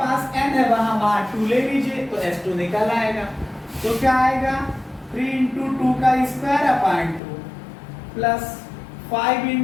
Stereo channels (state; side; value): drops out; right; at 7.2 s